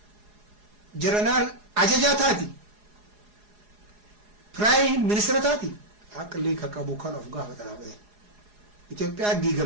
ጀነራል አጀጃ ታቲ ፕራይም ሚኒስትር ታቲ አቅሊ ከቀቡ ካን ኦፍ ጋር ተራበ ኢትዮጵያ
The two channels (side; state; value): left; late; 4.8 ms